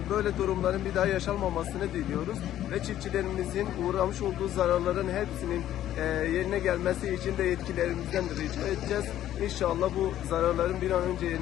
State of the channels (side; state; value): right; quieter; 12.3 dB